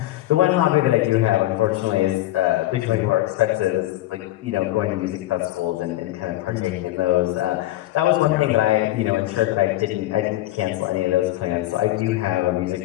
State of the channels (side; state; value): right; quieter; 16.0 dB